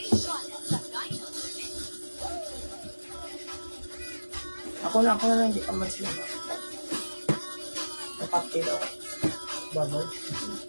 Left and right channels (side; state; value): both; inverted; correlation -1.00